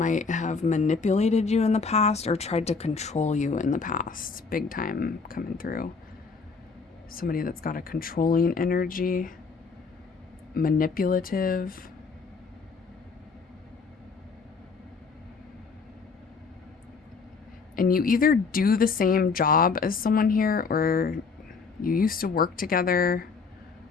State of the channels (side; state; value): right; quieter; 4.9 dB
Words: have manipulated you in the past or tried to control you in the past. Big time coming through. Somebody that's got a controlling energy. Manipulative. And you either do the same job as someone here, or you used to work together,